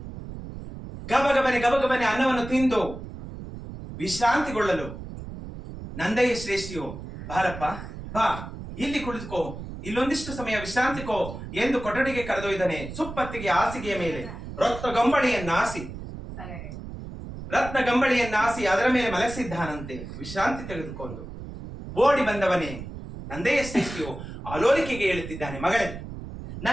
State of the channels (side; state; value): right; noise; rumble, 10 dB below the sound